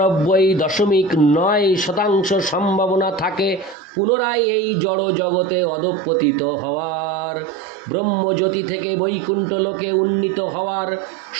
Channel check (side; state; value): left; drops out; at 3.8 s